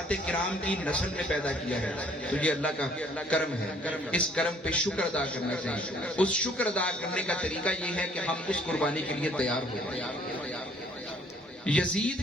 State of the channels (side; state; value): both; normal; correlation 0.60